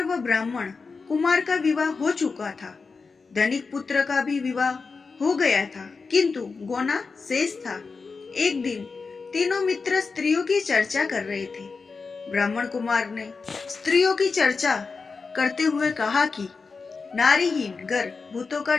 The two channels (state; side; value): quieter; right; 4.6 dB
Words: व ब्राह्मण कुमार का विवाह हो चुका था। धनिक पुत्र का भी विवाह हो गया था, किंतु गोना शेष था। एक दिन तीनों मित्र स्त्रियों की चर्चा कर रहे थे। ब्राह्मण कुमार ने स्त्रियों की चर्चा करते हुए कहा कि नारीहीन घर भूतों का